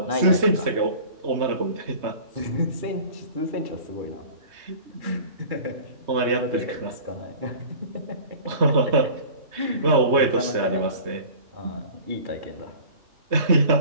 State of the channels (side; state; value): left; late; 3.2 ms